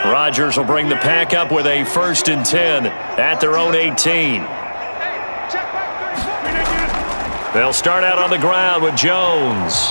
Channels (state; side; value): inverted; both; correlation -1.00